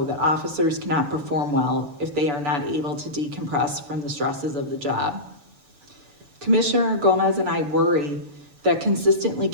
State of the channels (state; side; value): late; left; 7.1 ms